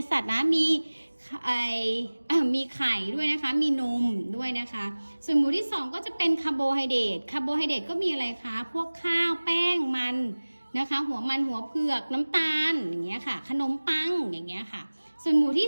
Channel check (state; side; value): inverted; both; correlation -1.00